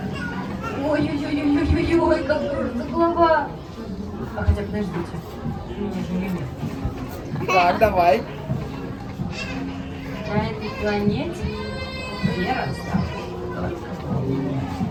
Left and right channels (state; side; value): identical; both; correlation 1.00